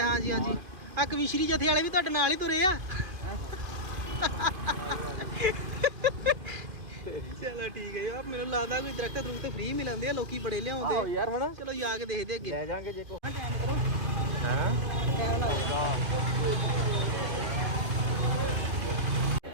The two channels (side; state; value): left; late; 2.5 ms